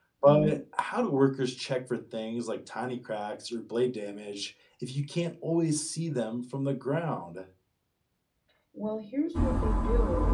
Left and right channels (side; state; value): both; identical; correlation 1.00